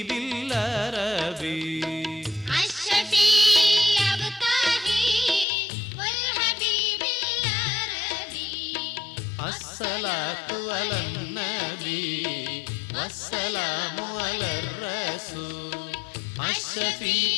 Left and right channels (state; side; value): drops out; right; at 5.5 s